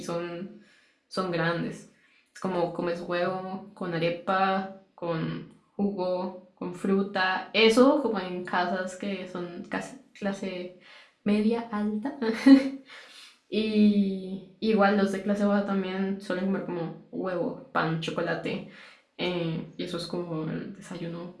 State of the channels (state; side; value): identical; both; correlation 1.00